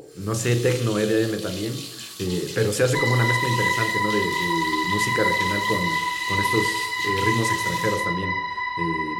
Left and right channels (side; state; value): both; identical; correlation 1.00